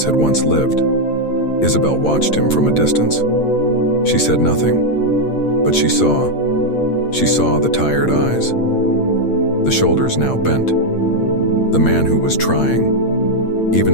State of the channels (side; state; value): right; late; 8.7 ms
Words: had once lived. Isabel watched him from a distance. She said nothing, but she saw the tired eyes, the shoulders now bent, the man who was trying,